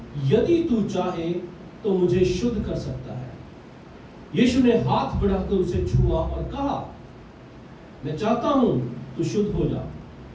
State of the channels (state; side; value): identical; both; correlation 1.00